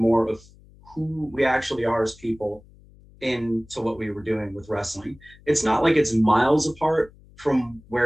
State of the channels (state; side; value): noise; left; hum, 25 dB below the sound